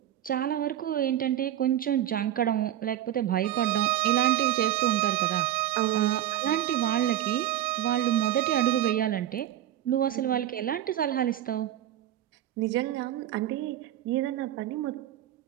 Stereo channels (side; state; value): left; quieter; 12.2 dB